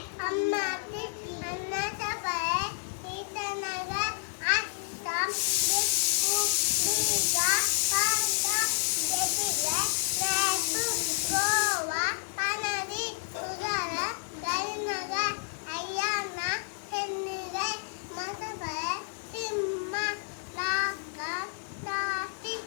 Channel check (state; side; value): silent; right; 58 dB below the other